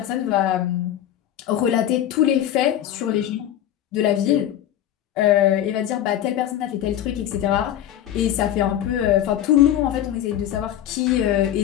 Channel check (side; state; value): right; quieter; 11.5 dB